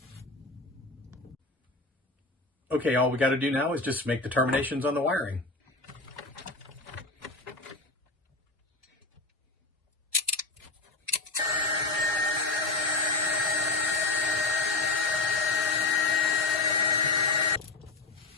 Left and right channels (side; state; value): right; quieter; 3.2 dB